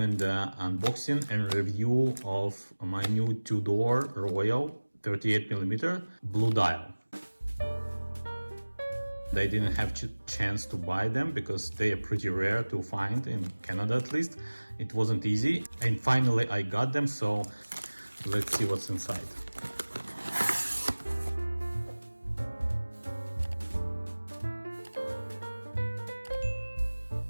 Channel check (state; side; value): inverted; both; correlation -1.00